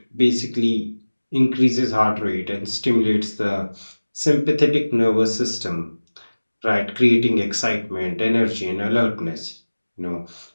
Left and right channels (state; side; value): inverted; both; correlation -1.00